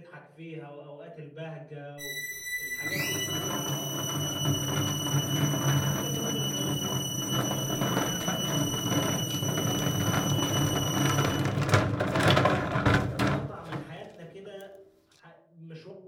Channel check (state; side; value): identical; both; correlation 1.00